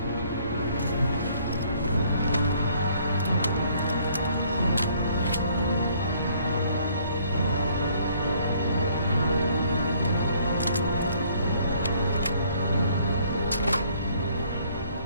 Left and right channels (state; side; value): inverted; both; correlation -0.62